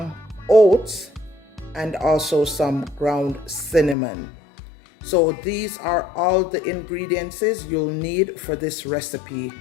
oats, and also some ground cinnamon. So these are all the ingredients you'll need for this recipe.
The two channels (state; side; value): drops out; right; at 4.0 s